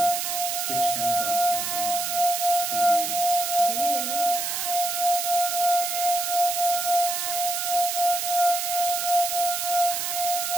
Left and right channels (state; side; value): noise; right; hiss, 2 dB below the sound